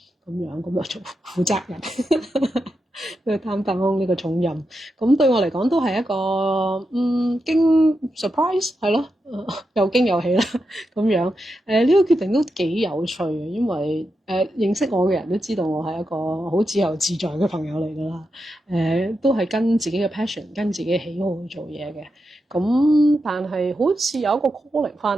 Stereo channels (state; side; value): normal; both; correlation 0.87